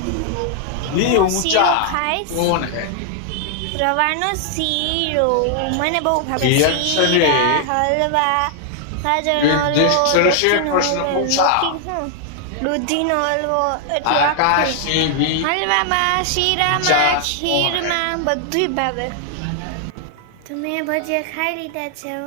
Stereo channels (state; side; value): different; both; correlation 0.00